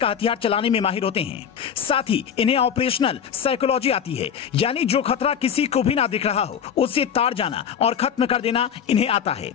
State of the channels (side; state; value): right; quieter; 8.0 dB